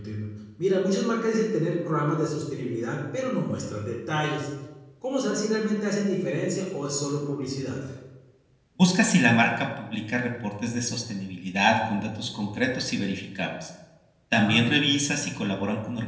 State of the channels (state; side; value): identical; both; correlation 1.00